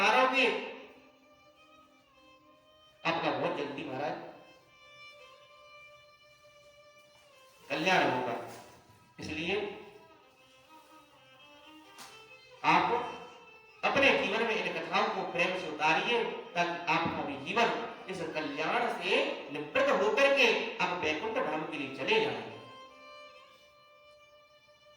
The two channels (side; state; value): both; identical; correlation 1.00